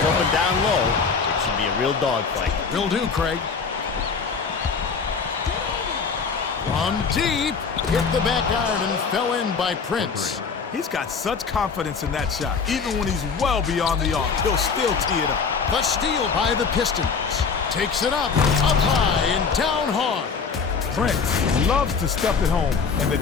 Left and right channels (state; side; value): quieter; right; 5.5 dB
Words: open down low. It should be a real dogfight. Will do, Craig. From deep, hit the back iron and fell in by Prince. He's got such confidence in that shot. Even when he's well beyond the arc, he'll still tee it up. The steal by the Pistons. Takes it up high and down hard. Prince loves to stuff it home, and the